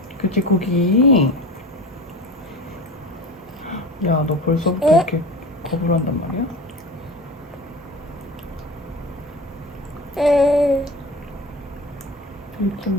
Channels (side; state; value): both; normal; correlation 0.34